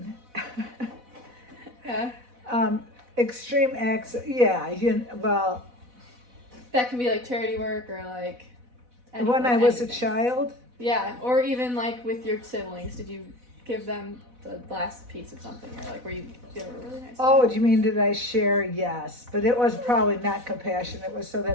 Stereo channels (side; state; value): left; late; 4.1 ms